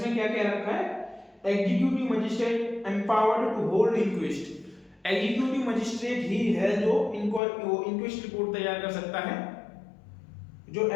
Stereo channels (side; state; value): right; drops out; at 7.4 s